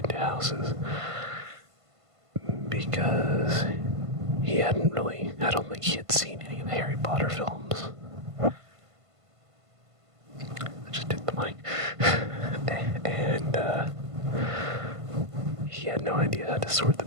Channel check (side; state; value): left; late; 1.5 ms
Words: houses because he hadn't really, I don't think he had seen any of the Harry Potter films. I just hit the mic. And he had no idea how to sort the